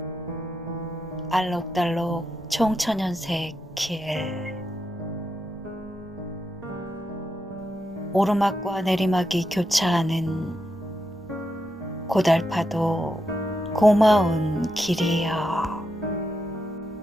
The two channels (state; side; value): normal; both; correlation 0.85